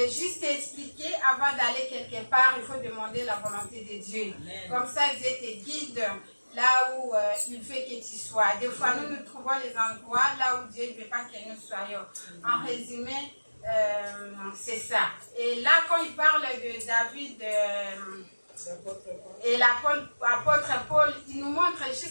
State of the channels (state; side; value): inverted; both; correlation -1.00